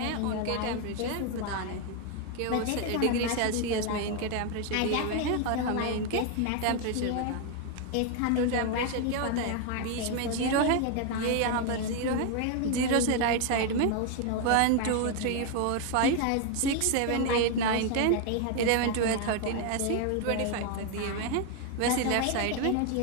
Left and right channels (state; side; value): different; both; correlation 0.01